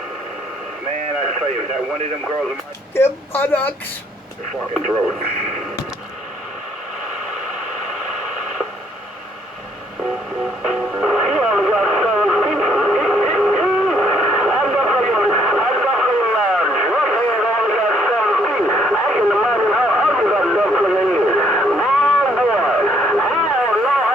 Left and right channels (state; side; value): normal; both; correlation 0.67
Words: Man, I tell you, if that one of them girls... Their buttocks! Your fucking throat.